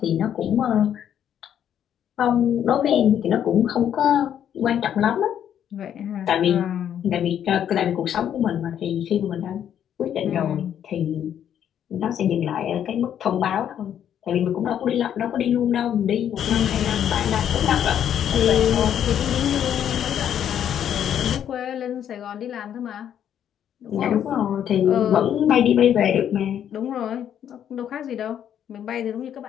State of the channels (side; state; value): right; quieter; 9.7 dB